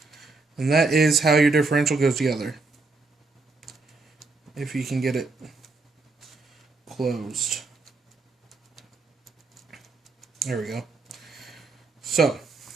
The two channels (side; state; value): left; quieter; 3.7 dB